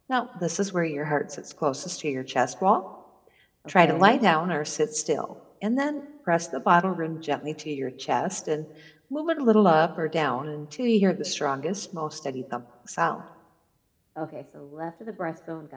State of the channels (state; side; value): identical; both; correlation 1.00